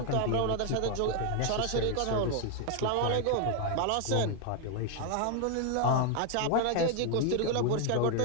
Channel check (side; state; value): both; different; correlation 0.00